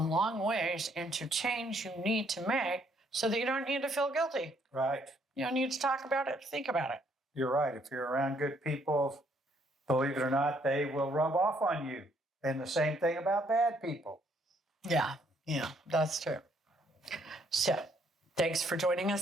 long ways into change you need to make so that you don't need to feel guilty. Right. You don't need to talk about it, think about it. You're right. If you're around good people, believe it or not, they will rub off on you. And the same thing about bad people. Yeah, that's true. So thanks for joining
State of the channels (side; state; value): both; normal; correlation 0.68